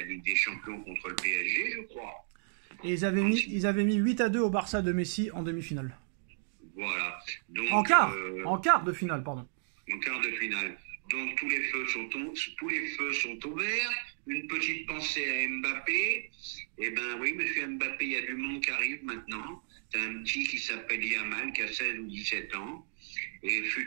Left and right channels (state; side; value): silent; left; digital silence